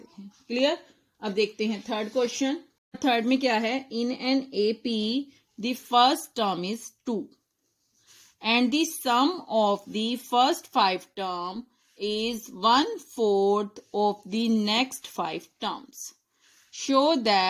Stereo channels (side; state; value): both; identical; correlation 1.00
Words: हैं। क्लियर। अब देखते हैं थर्ड क्वेश्चन। थर्ड में क्या है, in an AP the first term is 2 and the sum of the first 5 term is 1/4 of the next 5 terms. Show